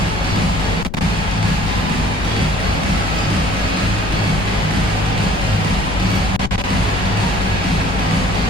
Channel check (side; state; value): left; noise; rumble, 8 dB below the sound